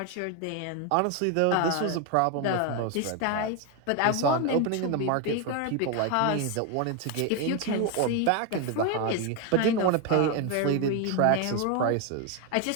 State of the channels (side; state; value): both; different; correlation 0.01